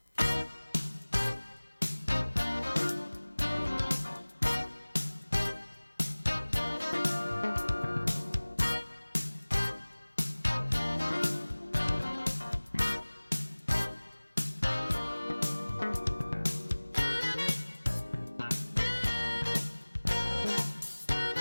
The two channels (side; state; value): both; inverted; correlation -1.00